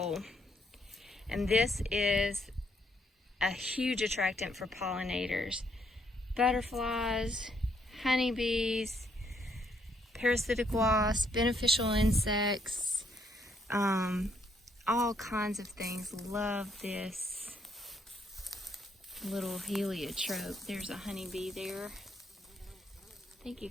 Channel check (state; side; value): normal; both; correlation 0.72